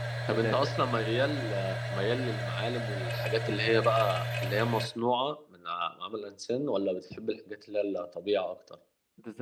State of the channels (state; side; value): identical; both; correlation 1.00